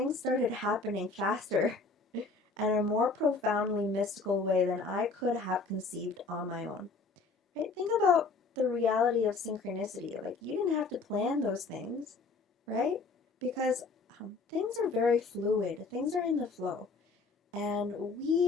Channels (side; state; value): right; quieter; 4.1 dB